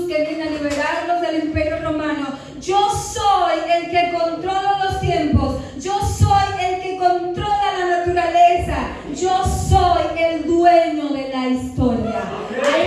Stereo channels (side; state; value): both; identical; correlation 1.00